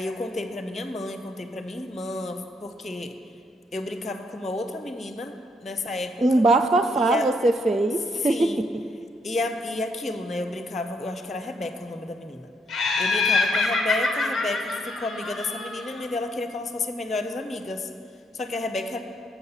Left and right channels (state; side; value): normal; both; correlation 0.73